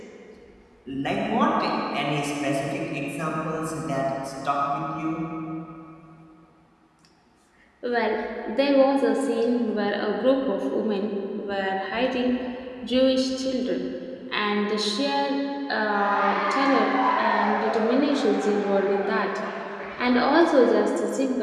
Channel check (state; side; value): identical; both; correlation 1.00